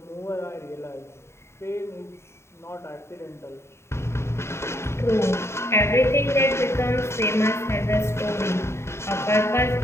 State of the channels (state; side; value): late; right; 0.13 ms